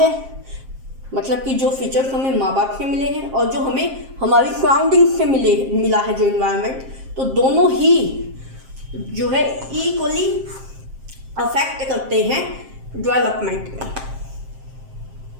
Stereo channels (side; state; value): left; late; 7.5 ms